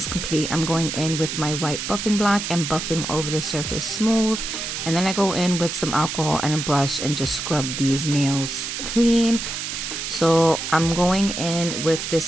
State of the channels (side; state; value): right; noise; hiss, 5 dB below the sound